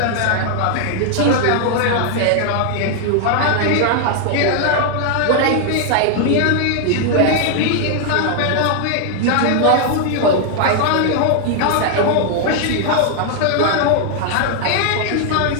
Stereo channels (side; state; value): both; different; correlation 0.00